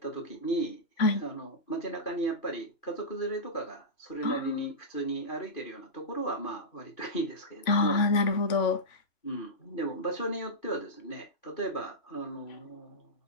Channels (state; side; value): late; right; 2.9 ms